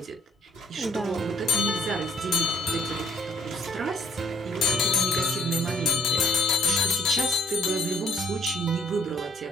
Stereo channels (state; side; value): normal; both; correlation 0.64